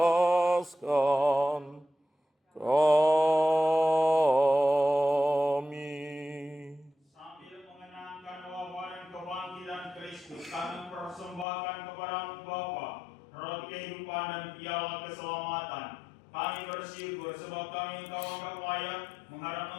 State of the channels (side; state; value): right; drops out; at 11.5 s